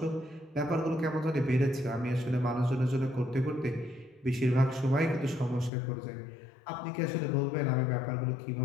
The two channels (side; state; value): right; drops out; at 5.7 s